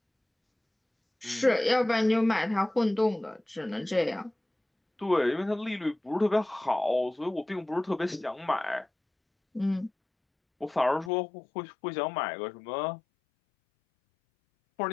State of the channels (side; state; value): right; drops out; at 11.1 s